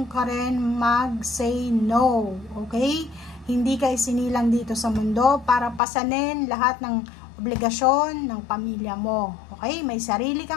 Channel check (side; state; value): right; drops out; at 5.8 s